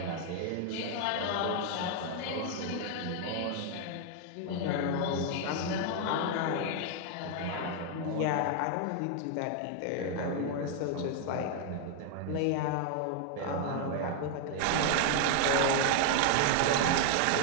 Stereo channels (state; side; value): different; both; correlation 0.00